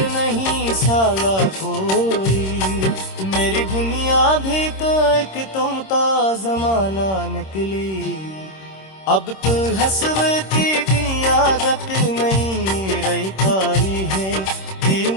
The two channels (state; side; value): late; right; 26 ms